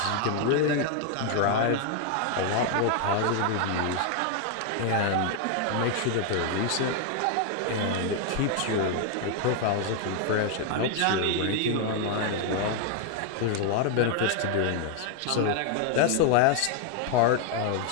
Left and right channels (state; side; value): different; both; correlation 0.00